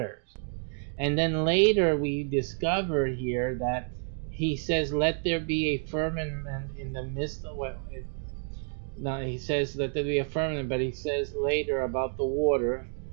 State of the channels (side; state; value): left; silent; 57 dB below the other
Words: And then later we discover here that He says, let there be a firmament in the midst of He says let there be a firmament, but He says later about the water,